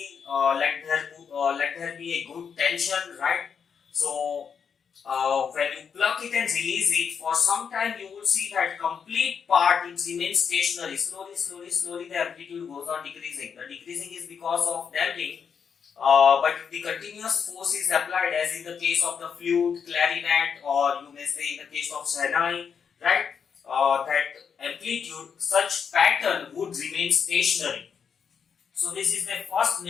let there be a good tension, right. So when you pluck it and release it, for some time you will see that complete part it remains stationary. Slowly the amplitude goes on decreasing. The decreasing is because of damping. But if the continuous force is applied, as in the case of the flute, clarinet, or you may say in the case of Shahnayi, right, that amplitude, such pattern would remain stationary. So this is the first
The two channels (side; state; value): right; quieter; 6.8 dB